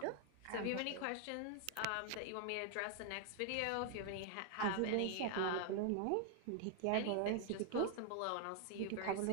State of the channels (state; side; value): different; both; correlation 0.00